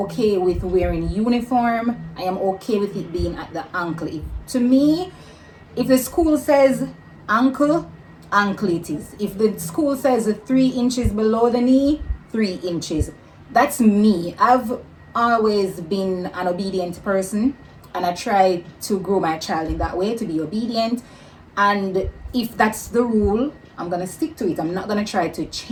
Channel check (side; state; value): both; identical; correlation 1.00